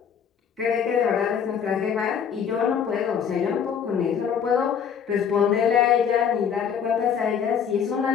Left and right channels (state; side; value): quieter; right; 7.7 dB